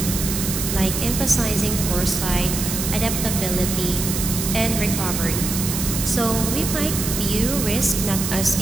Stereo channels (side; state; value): right; noise; hiss, 3 dB below the sound